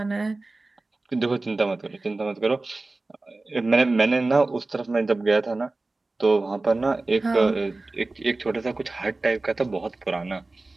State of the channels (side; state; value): left; quieter; 3.2 dB